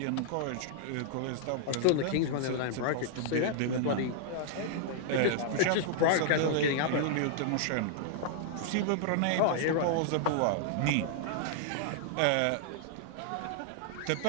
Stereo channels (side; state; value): both; different; correlation -0.01